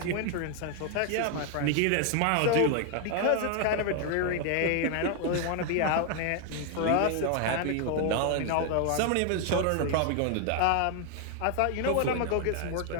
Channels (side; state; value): both; different; correlation 0.00